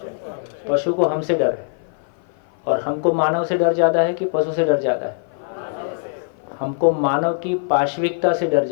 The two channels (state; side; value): silent; right; 55 dB below the other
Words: पशु को हमसे डर है। और हमको मानव से डर ज़्यादा है कि पशु से डर ज़्यादा है? हमको मानव की पाशविकता से डर